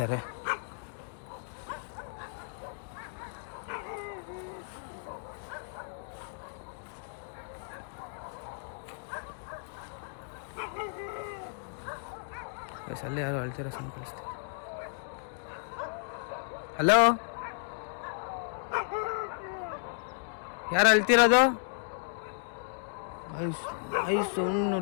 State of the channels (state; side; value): silent; right; digital silence